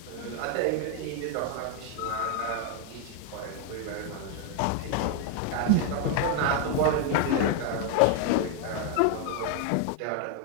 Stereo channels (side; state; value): both; different; correlation 0.00